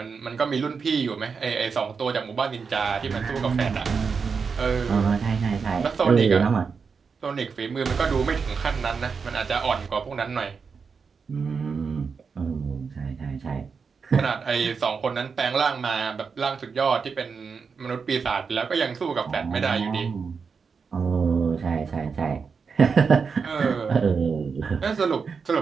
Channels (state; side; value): quieter; left; 5.5 dB